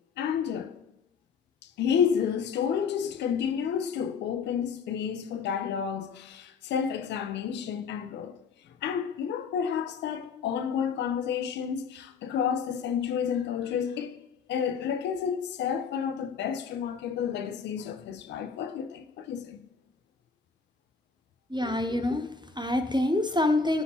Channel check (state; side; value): quieter; right; 5.6 dB